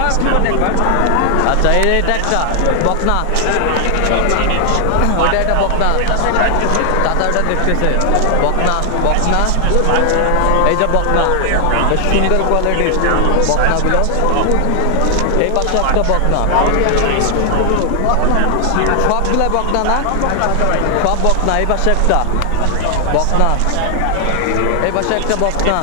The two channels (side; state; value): both; different; correlation 0.00